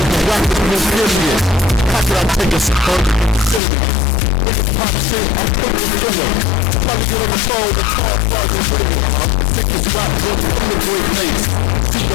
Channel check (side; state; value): right; drops out; at 3.6 s